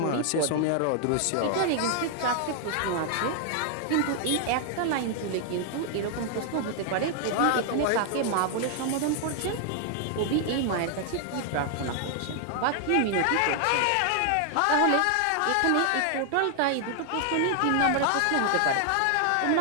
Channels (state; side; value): different; both; correlation 0.00